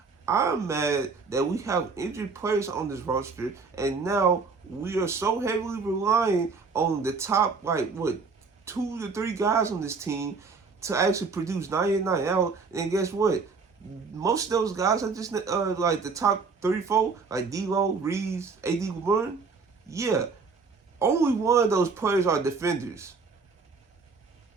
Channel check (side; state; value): left; quieter; 4.7 dB